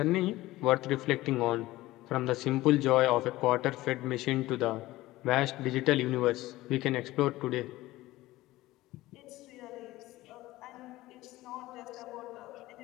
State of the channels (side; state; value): right; quieter; 17.6 dB